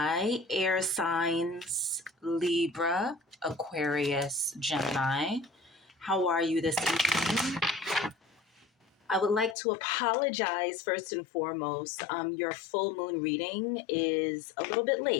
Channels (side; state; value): right; drops out; at 9.6 s